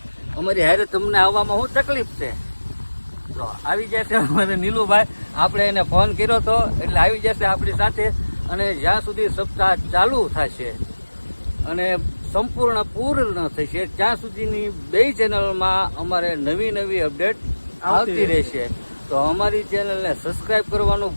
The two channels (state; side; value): inverted; both; correlation -1.00